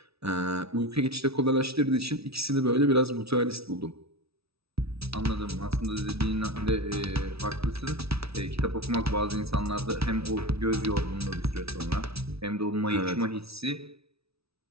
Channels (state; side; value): late; left; 0.77 ms